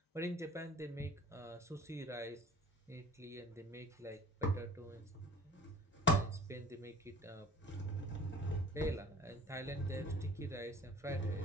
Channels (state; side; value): normal; both; correlation 0.47